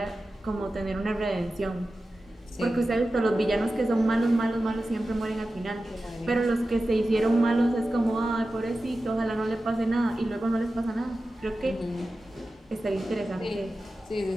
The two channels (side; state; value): both; normal; correlation 0.94